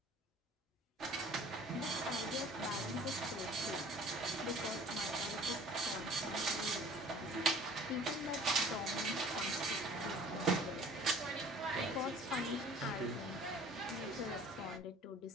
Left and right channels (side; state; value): both; normal; correlation 0.49